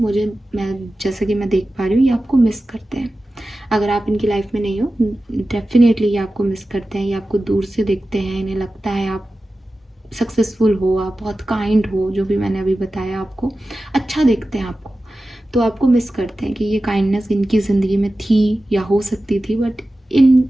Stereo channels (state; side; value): normal; both; correlation 0.94